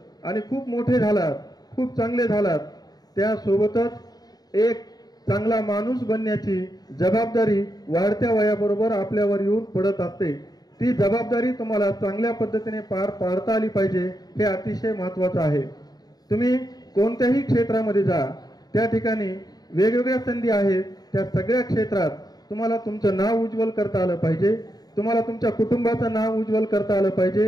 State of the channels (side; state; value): right; late; 0.19 ms